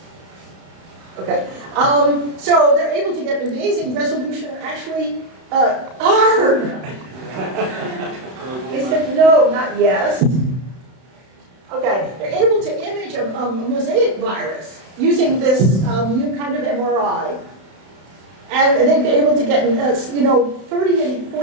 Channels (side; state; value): left; late; 31 ms